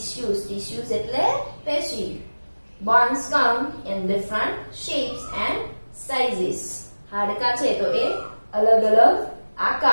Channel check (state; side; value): inverted; both; correlation -1.00